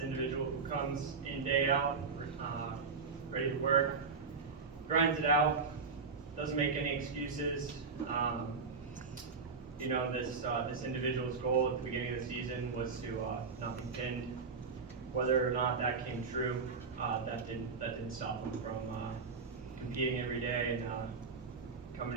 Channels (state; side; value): quieter; left; 4.9 dB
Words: individual who comes in day out, ready to work, grinds it out, doesn't make any excuses. You know, this individual's goal at the beginning of the season was to not be pinned. Whether or not that came true, that didn't stop him from competing every day and coming